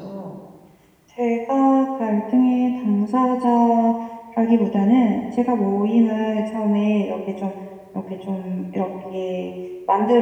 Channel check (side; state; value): both; identical; correlation 1.00